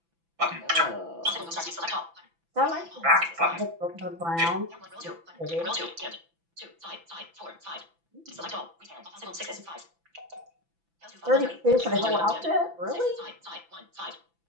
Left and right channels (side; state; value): left; late; 6.0 ms